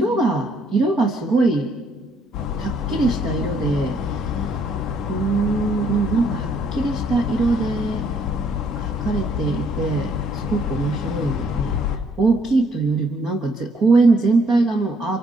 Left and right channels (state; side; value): normal; both; correlation 0.67